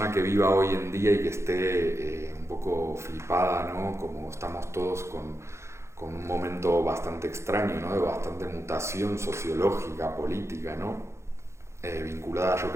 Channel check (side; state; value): left; late; 0.13 ms